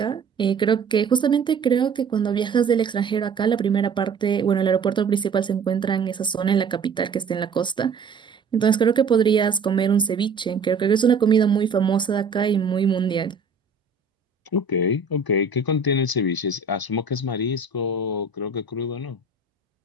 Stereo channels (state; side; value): quieter; left; 4.8 dB